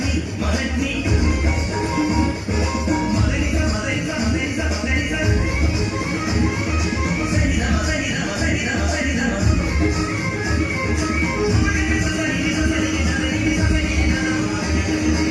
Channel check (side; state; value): both; identical; correlation 1.00